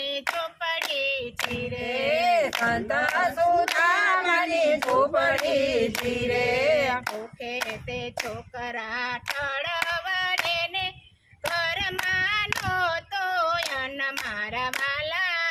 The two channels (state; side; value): identical; both; correlation 1.00